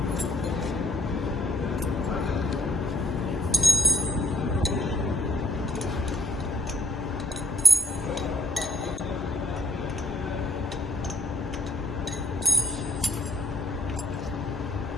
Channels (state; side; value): normal; both; correlation 0.62